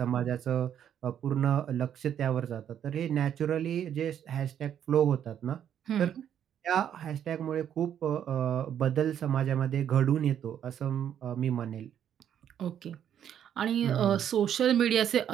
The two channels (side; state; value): left; quieter; 9.5 dB